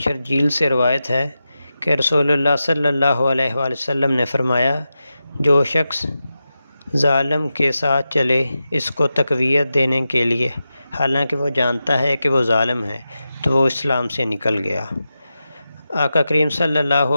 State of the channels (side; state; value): both; inverted; correlation -0.91